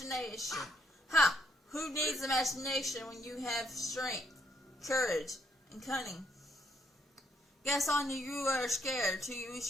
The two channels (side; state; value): both; normal; correlation 0.73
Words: Ha! Who needs imagination when you have strength, courage, and cunning? Guess on you are scared to use